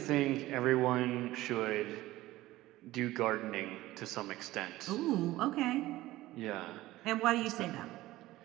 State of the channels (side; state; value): left; quieter; 17.0 dB